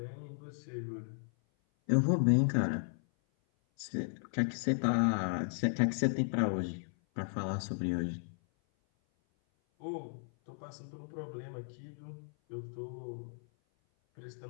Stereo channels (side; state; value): right; silent; 54 dB below the other